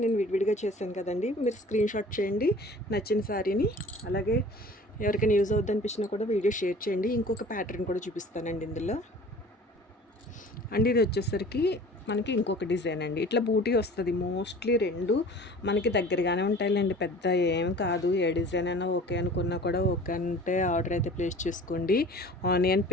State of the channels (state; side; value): normal; both; correlation 0.45